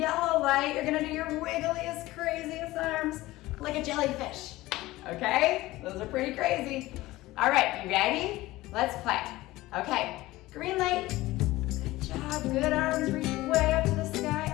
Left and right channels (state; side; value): quieter; right; 18.1 dB